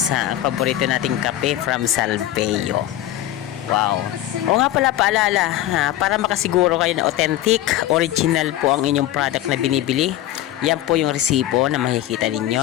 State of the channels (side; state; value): right; quieter; 13.6 dB